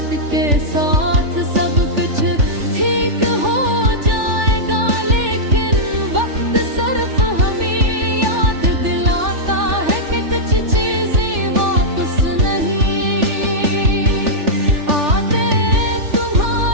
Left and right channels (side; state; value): left; late; 3.4 ms